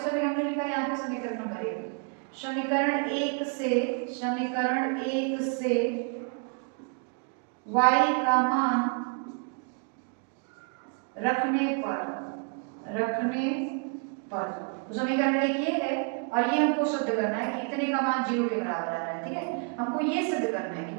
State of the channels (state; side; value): quieter; left; 39.1 dB